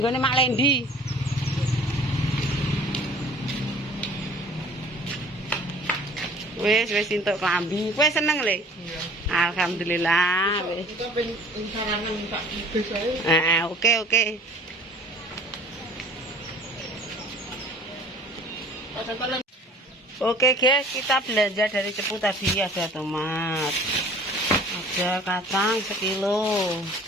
gone Mak Lendi. Wis entuk klambi. Kowe seneng le? Iya. Alhamdulillah. Wis. Kita pengen saranan minta bebas ae. Oke. Oke guys, kita belanja dari Cepu tadi. Ada tomat, ada kacang sekilo,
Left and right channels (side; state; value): both; normal; correlation 0.49